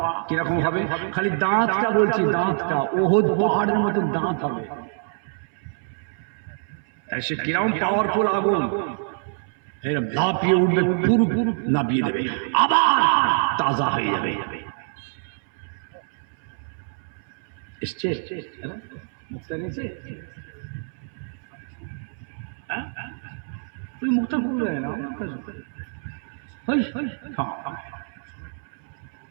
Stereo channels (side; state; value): left; silent; 62 dB below the other